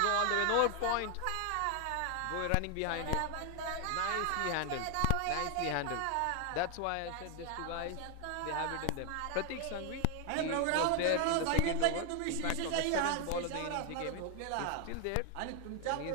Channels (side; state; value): both; different; correlation 0.00